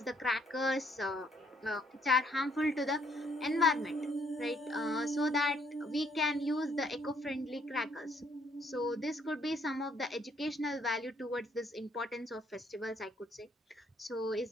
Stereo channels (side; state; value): both; normal; correlation 0.67